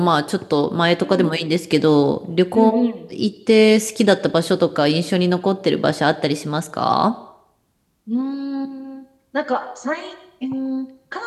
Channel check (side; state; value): both; identical; correlation 1.00